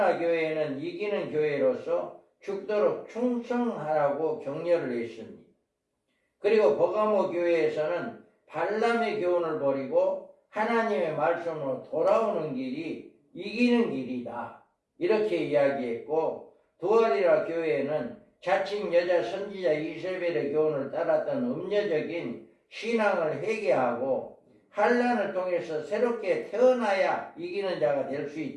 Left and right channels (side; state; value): both; identical; correlation 1.00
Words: 교회는 이기는 교회로서 죽도록 충성하라고 격려를 했습니다. 그리고 버가모 교회에서는 발람의 교훈을 버리고 하나님의 말씀으로 돌아오는 길이 이기는 길이다 이렇게 이야기했고 두아리라 교회에는 자칭 여자 선지자 이세벨의 교훈을 따랐던 음녀적인 신앙을 회개하고 환난을 통해서 새롭게 태어나야 이기는 자가 될 수